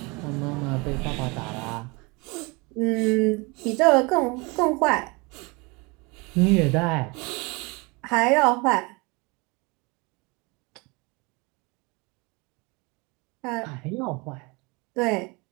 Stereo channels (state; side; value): quieter; left; 27.5 dB